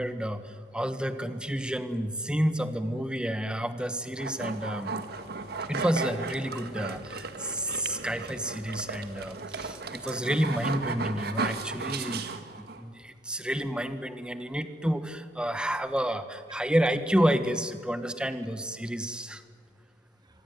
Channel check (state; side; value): normal; both; correlation 0.73